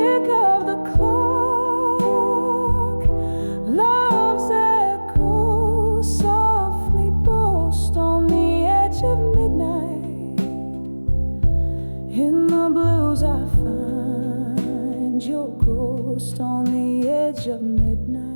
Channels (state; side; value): inverted; both; correlation -1.00